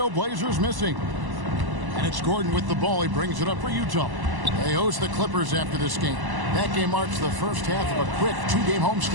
missing. And it's Gordon with the ball. He brings it up for Utah. They host the Clippers after this game. That game marks the first half of a quick 2-game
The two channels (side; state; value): left; late; 1.1 ms